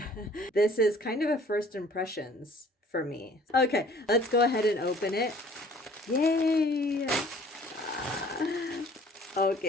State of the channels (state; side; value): normal; both; correlation 0.53